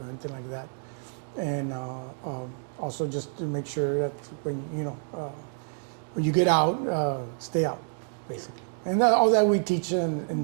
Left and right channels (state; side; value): silent; left; 59 dB below the other